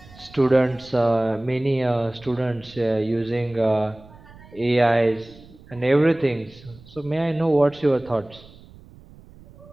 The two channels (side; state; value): right; noise; rumble, 22 dB below the sound